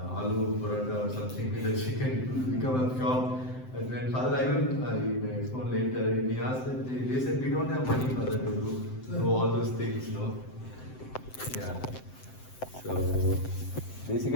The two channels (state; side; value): late; right; 7.8 ms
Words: aloo paratha or something with the chicken, it would become a shop. And when Father Ivan, I may explain later, he asked that they said we don't have money, Father, to do all those things, no? Yeah. So